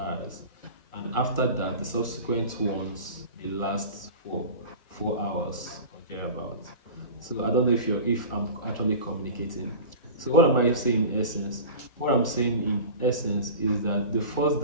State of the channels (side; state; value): right; late; 1.4 ms